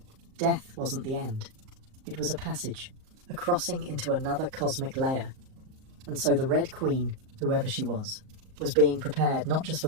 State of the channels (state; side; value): late; left; 38 ms